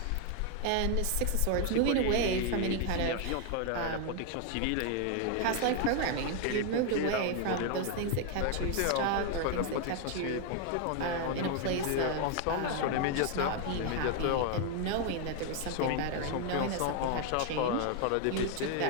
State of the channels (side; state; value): both; different; correlation 0.01